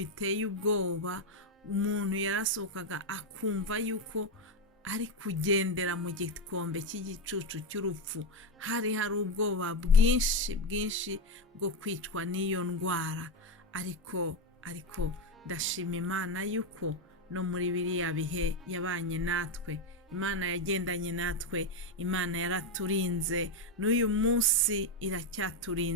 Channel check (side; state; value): both; normal; correlation 0.09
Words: ubwoba, umuntu yarasohokaga akumva yuko ari kugendera mu gikombe cy'igicucu cy'urupfu. Hari ubwoba bwinshi bwo kwicwa n'iyo ndwara, ariko ndashima Imana yuko no muri biriya bihe yabanye natwe. Imana yagendanye natwe, Imana yaraturinze, n'uyu munsi